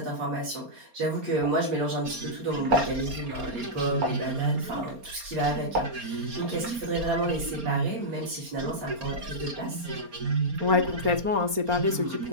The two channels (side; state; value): left; late; 4.3 ms